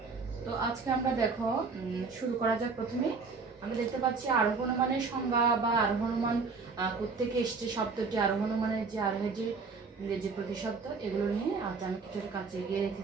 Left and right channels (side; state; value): left; quieter; 4.6 dB